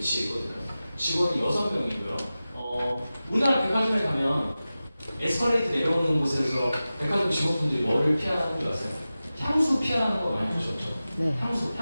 있거든요. 직원이 6명이고요. 우리나라 백화점에 가면 에스컬레이터 내려오는 곳에서 백화점 직원분들이 뭐를 피하는 줄 아세요? 향수 피하는 거 많이 보셨죠? 네. 향수,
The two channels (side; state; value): both; inverted; correlation -0.95